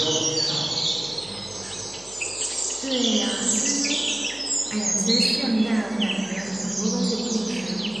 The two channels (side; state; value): left; noise; hum, 24 dB below the sound